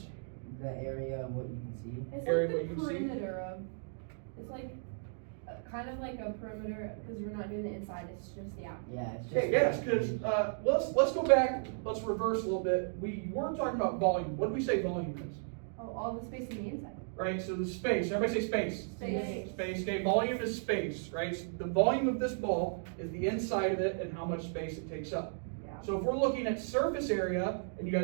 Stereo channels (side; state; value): left; silent; digital silence